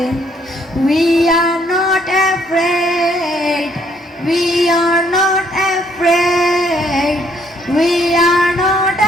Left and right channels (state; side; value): normal; both; correlation 0.68